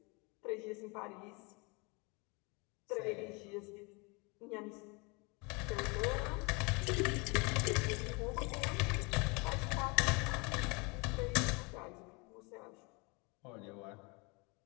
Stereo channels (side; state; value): right; quieter; 29.2 dB